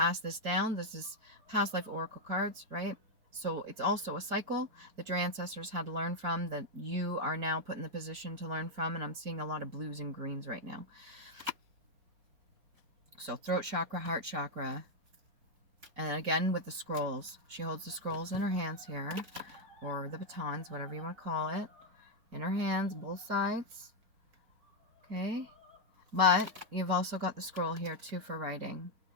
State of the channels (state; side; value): late; left; 4.4 ms